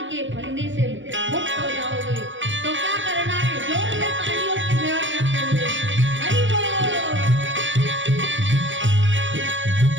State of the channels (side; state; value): left; late; 0.55 ms